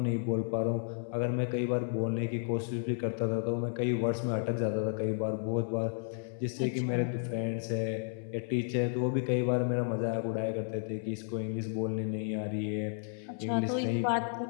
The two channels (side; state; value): right; silent; 56 dB below the other